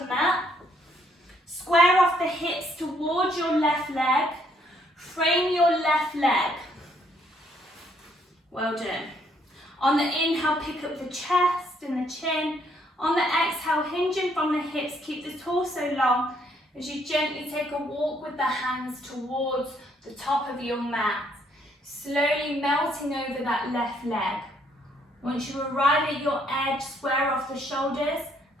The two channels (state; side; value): normal; both; correlation 0.69